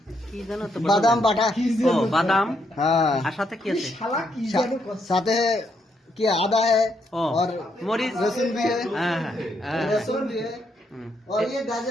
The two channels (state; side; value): normal; both; correlation 0.76